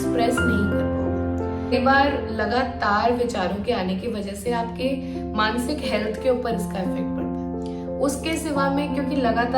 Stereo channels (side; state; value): both; identical; correlation 1.00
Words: नहीं कर पाओगे। कई बार लगातार विचारों के आने की वजह से आपके मानसिक हेल्थ के ऊपर इसका इफेक्ट पड़ता है। उसके सिवा में क्योंकि